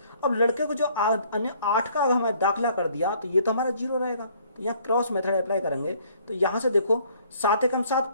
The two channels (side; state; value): both; inverted; correlation -0.61